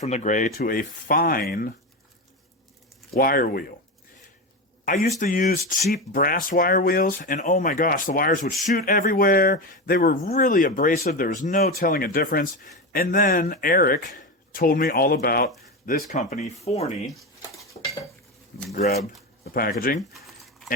the gray to a fine wire wheel. I used to use cheap brass wire wheels, and oh my gosh, the wires would shoot everywhere. They were really abrasive. There was no telling a difference. And then Eric told me all about this company, Forney. Grab the packaging,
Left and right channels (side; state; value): both; normal; correlation 0.18